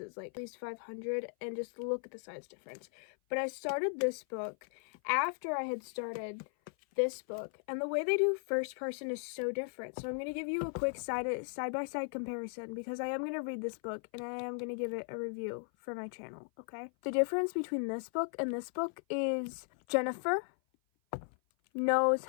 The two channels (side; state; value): right; silent; 53 dB below the other